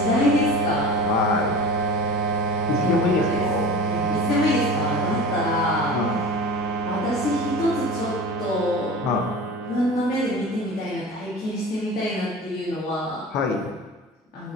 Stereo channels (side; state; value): both; normal; correlation 0.35